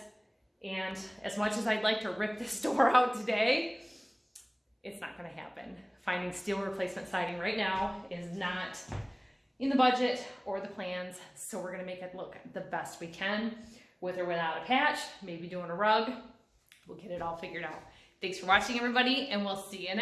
And as much as I'd like to rip this door out today, it's not gonna happen. Finding steel replacement siding right now is not in the budget or the plans, so we're gonna make it look the best we can, with or without a patch, maybe doing a rug. We'll get it all figured out. Thanks for watching everybody, and we'll see you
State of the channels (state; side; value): identical; both; correlation 1.00